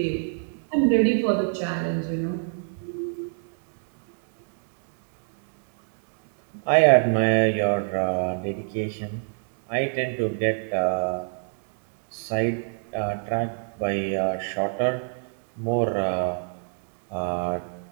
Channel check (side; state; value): left; silent; digital silence